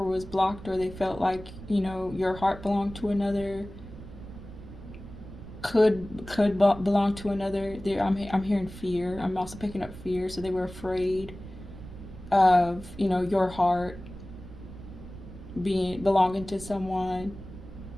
was blocked, or they felt like your heart belonged to another, could belong to another. I'm hearing fear. I'm also picking up fear. So they were afraid of your heart being belonging to someone,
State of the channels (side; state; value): right; noise; rumble, 14 dB below the sound